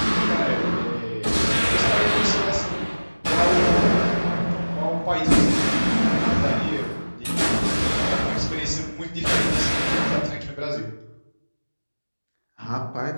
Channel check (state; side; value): inverted; both; correlation -1.00